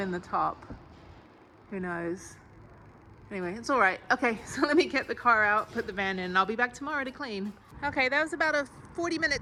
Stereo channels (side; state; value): both; identical; correlation 1.00